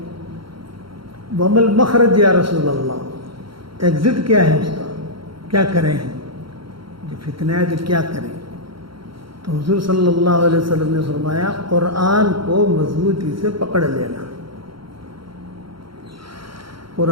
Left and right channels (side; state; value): left; late; 0.74 ms